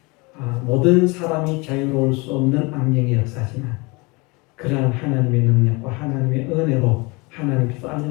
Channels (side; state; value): right; quieter; 26.9 dB